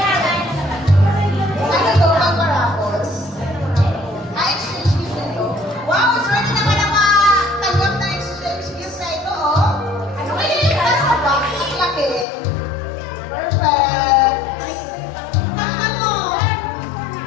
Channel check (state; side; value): drops out; right; at 12.2 s